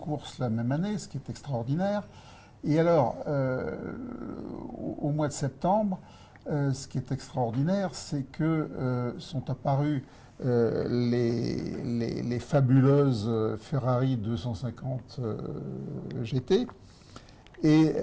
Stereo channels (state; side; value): identical; both; correlation 1.00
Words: la même année, ce qui est extraordinaire. Et alors, au mois de septembre, ce qui est extraordinaire, c'est que sont apparues les fabuleuses Ferrari 250 GT. Et